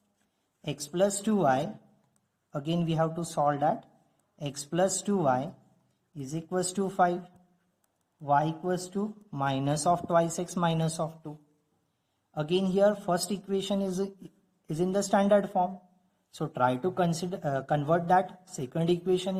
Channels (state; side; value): identical; both; correlation 1.00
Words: x plus 2y. Again we have to solve that. X plus 2y is equals to 5. Y equals to minus of twice x minus of 2. Again here first equation is in the standard form. So try to convert that second equation